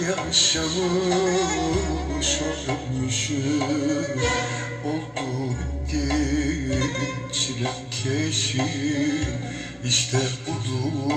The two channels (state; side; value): identical; both; correlation 1.00